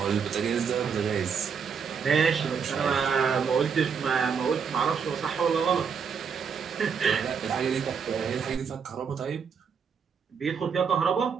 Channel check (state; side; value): quieter; left; 6.4 dB